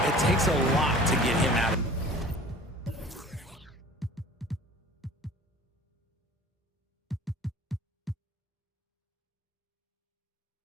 It takes a lot to get him out of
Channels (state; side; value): normal; both; correlation 0.45